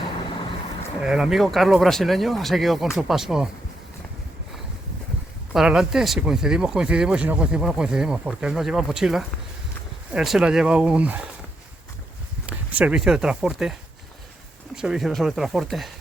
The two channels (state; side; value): normal; both; correlation 0.80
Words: El amigo Carlos brasileño ha seguido con su paso para adelante. Si coincidimos, coincidimos, y si no coincidimos, no coincidimos, porque él no lleva mochila, él se la lleva un servicio de transporte, un servicio de sobretransporte,